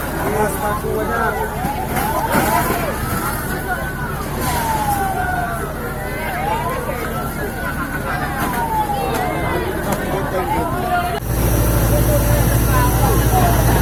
Mas paku banyak.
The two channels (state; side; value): identical; both; correlation 1.00